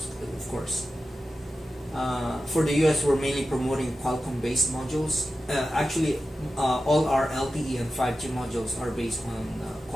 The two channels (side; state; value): both; normal; correlation 0.92